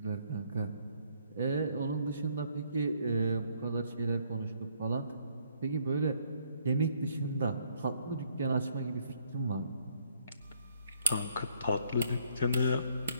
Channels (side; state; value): both; inverted; correlation -0.67